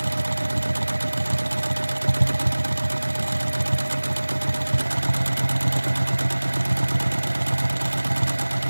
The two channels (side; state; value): both; inverted; correlation -1.00